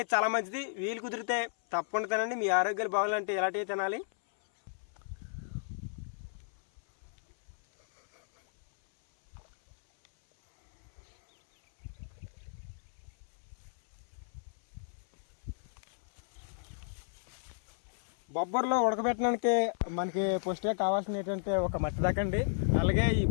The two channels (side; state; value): right; silent; 55 dB below the other